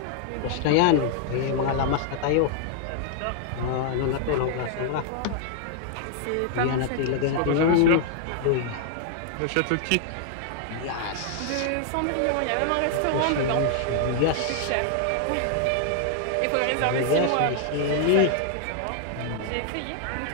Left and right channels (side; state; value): both; different; correlation 0.00